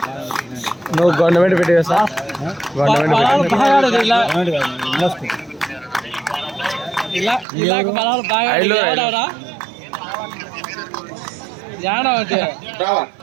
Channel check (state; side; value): drops out; left; at 7.5 s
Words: నువ్వు గవర్నమెంట్ పెట్టేవా sir? Government